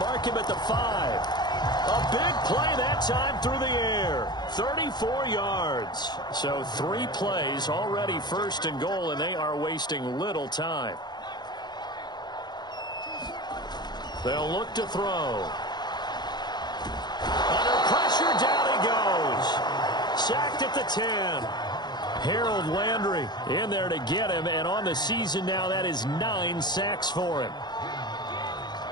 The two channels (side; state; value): right; late; 0.21 ms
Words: him at the 5. A big play that time through the air. 34 yards. So 3 plays already 1st and goal, and they are wasting little time. They'll look to throw. Under pressure, down he goes. Sacked at the 10. Harold Landry in there to get him, and on the season now, that is 9 sacks for him.